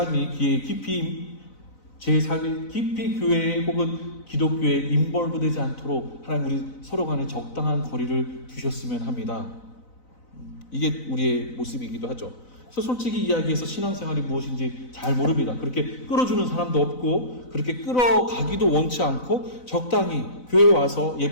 깊이 교회에 혹은 기독교에 인벌브되지 않도록 하나님 우리 서로 간에 적당한 거리를 두셨으면 합니다. 이게 우리의 모습이기도 하죠. 그래서 솔직히 이야기해서 신앙생활이 무엇인지 잘 모릅니다. 그렇게 끌어주는 사람도 없고 그렇게 끌어가기도 원치 않고 적당히 교회에 와서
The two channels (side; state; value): right; late; 4.0 ms